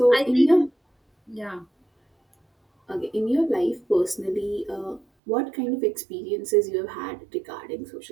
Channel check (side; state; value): left; drops out; at 5.1 s